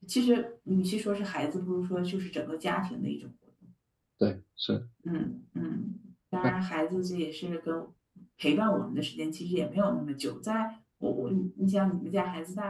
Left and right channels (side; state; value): both; identical; correlation 1.00